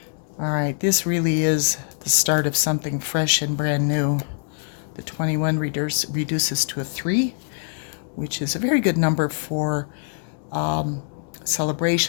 All right, this really is the start of something fresh and brand new. The 21 reduces to a 3, which is a very good number for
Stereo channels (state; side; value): silent; right; digital silence